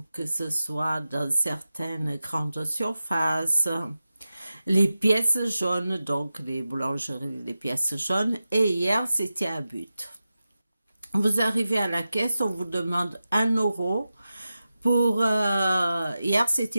que ce soit dans certaines grandes surfaces, les pièces jaunes, donc les boulangeries, les pièces jaunes, et hier c'était à But. Vous arrivez à la caisse, on vous demande 1 € pour hier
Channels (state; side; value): inverted; both; correlation -0.93